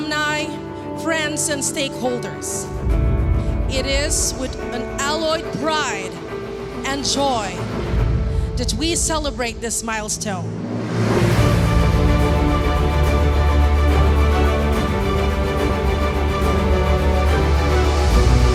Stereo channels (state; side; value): identical; both; correlation 1.00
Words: friends, and stakeholders. It is with an alloyed pride and joy that we celebrate this milestone.